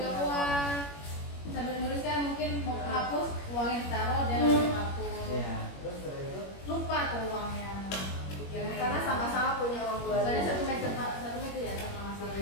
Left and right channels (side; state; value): right; late; 21 ms